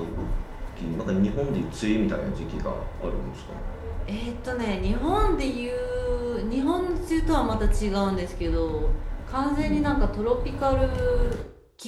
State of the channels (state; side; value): identical; both; correlation 1.00